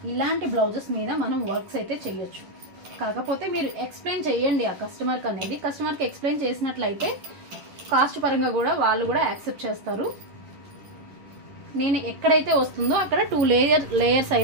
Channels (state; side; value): late; left; 10 ms